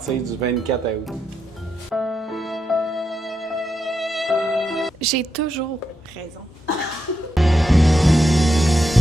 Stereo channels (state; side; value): normal; both; correlation 0.84